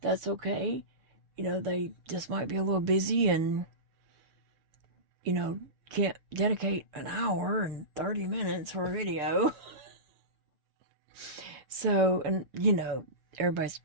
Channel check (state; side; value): late; left; 6.9 ms